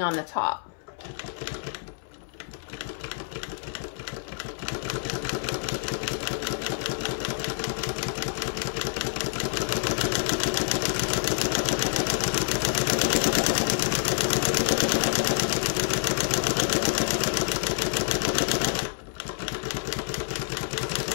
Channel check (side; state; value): right; silent; 60 dB below the other